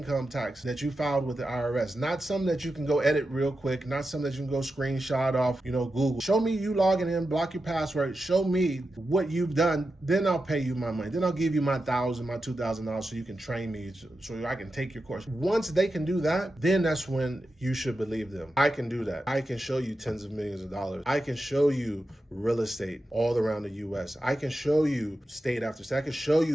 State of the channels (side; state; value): both; normal; correlation 0.90